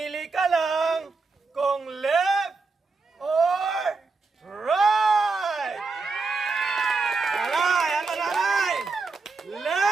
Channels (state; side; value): quieter; left; 4.1 dB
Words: ka lang kung left or right! Nanay, ano nanay?